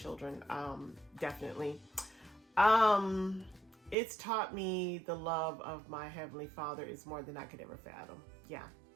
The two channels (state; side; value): drops out; left; at 4.0 s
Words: Definitely. It's taught me the love of my Heavenly Father is more than I could ever fathom. Yeah,